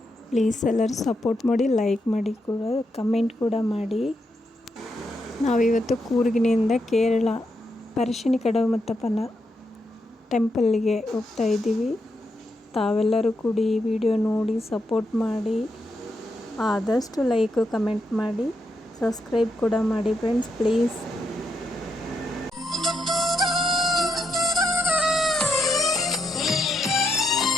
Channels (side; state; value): both; normal; correlation 0.81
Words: ಪ್ಲೀಸ್ ಎಲ್ಲರೂ ಸಪೋರ್ಟ್ ಮಾಡಿ, ಲೈಕ್ ಮಾಡಿ, ಕೂಡ ಕಮೆಂಟ್ ಕೂಡ ಮಾಡಿ. ನಾವಿವತ್ತು ಕೂರ್ಗಿನಿಂದ ಕೇರಳ ಪರಶಿನಿ ಕಡಮತ್ತಪ್ಪನ ಟೆಂಪಲ್ಗೆ ಹೋಗ್ತಾ ಇದ್ದೀವಿ. ತಾವೆಲ್ಲರೂ ಕೂಡ ಈ ವಿಡಿಯೋ ನೋಡಿ ಸಪೋರ್ಟ್ ಮಾಡಿ, ಆದಷ್ಟು ಲೈಕ್ ಕಮೆಂಟ್ ಮಾಡಿ, ಸಬ್ಸ್ಕ್ರೈಬ್ ಕೂಡ ಮಾಡಿ ಫ್ರೆಂಡ್ಸ್ ಪ್ಲೀಸ್.